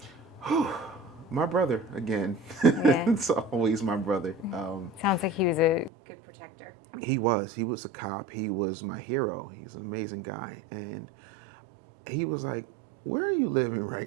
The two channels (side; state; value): left; drops out; at 5.9 s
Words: My brother, again. Yeah. It's always my brother. Sounds like he was a good protector. He was. He was a cop. He was my hero. He's an amazing guy. And he was like, where are you living